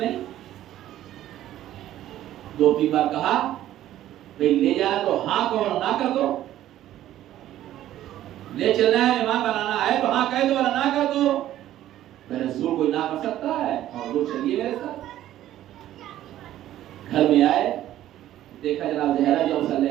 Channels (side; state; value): left; quieter; 13.1 dB